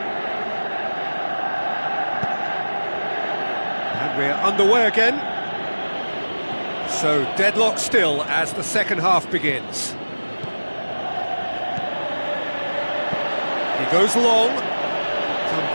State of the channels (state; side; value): inverted; both; correlation -1.00